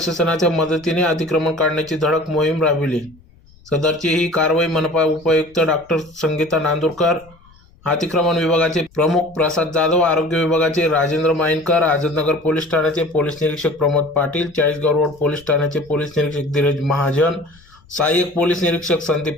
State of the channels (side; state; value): left; noise; rumble, 28 dB below the sound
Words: मदतीने अतिक्रमण काढण्याची धडक मोहीम राबविली। सदरची ही कारवाई मनपा उपायुक्त डॉक्टर संगीता नांदुरकर, अतिक्रमण विभागाचे प्रमुख प्रसाद जाधव, आरोग्य विभागाचे राजेंद्र माइनकर, आझादनगर पोलीस ठाण्याचे पोलीस निरीक्षक प्रमोद पाटील, चाळीसगाव रोड पोलीस ठाण्याचे पोलीस निरीक्षक धीरज महाजन, सहाय्यक पोलीस निरीक्षक